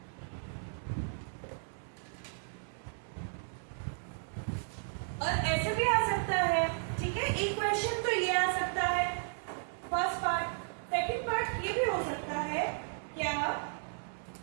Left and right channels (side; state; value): left; silent; 55 dB below the other